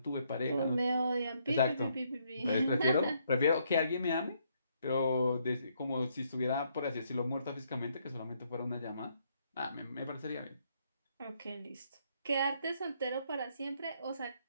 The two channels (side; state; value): both; inverted; correlation -0.72